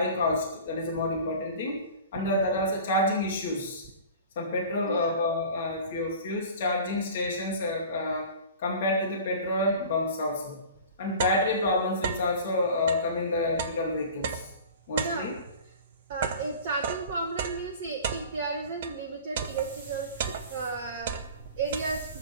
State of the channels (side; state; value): both; inverted; correlation -0.40